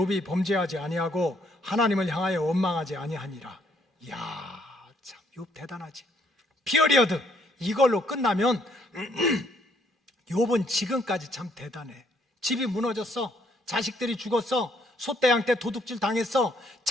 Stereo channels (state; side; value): normal; both; correlation 0.68